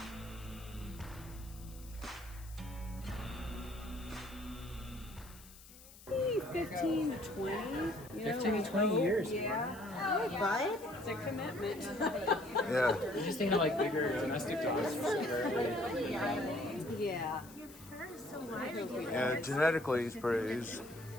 15 to 20. 15 to 20 years. Yeah. Bud? It's a commitment. Yeah. You're just thinking of like bigger domestic dogs. Yeah. Your fur is so wide. Yeah, genetically he's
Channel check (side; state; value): left; noise; hiss, 20 dB below the sound